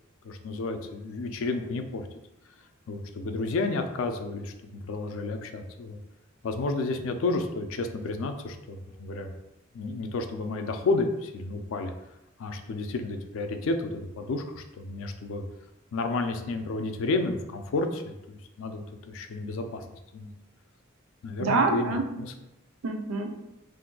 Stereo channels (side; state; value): both; normal; correlation 0.22